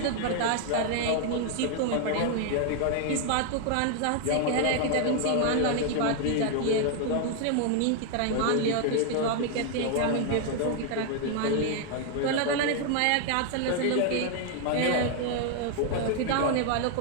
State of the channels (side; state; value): both; different; correlation 0.00